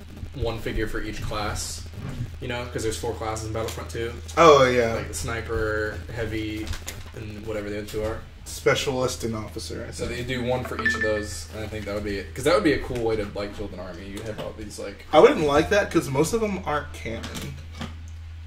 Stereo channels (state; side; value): identical; both; correlation 1.00